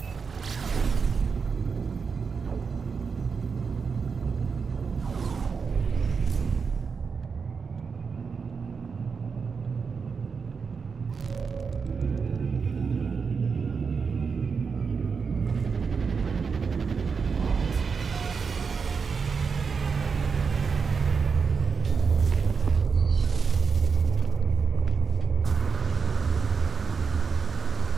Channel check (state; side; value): quieter; left; 5.5 dB